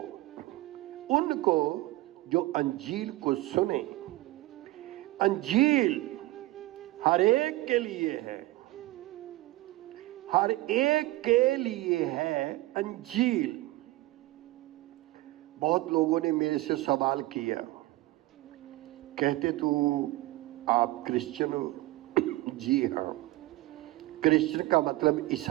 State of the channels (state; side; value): quieter; left; 18.8 dB